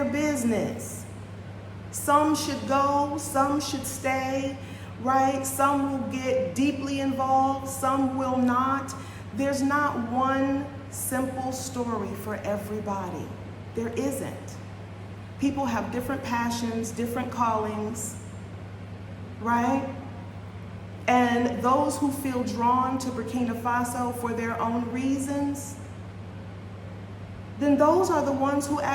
business. Some should go, some should stay, right? Some will get deeply involved, some will not. There's not one simple story for everybody. There isn't. People have different passions, different callings, right? And those who feel drawn to Burkina Faso for their own reasons, then those are the ones who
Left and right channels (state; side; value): identical; both; correlation 1.00